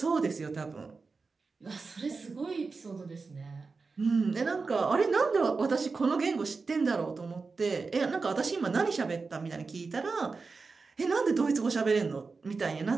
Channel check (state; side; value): quieter; left; 4.3 dB